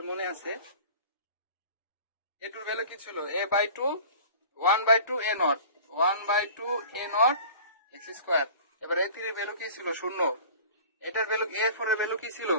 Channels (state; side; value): inverted; both; correlation -0.42